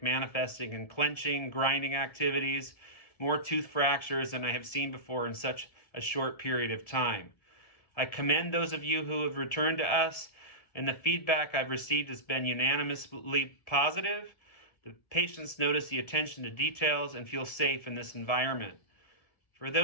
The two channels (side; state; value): right; late; 1.7 ms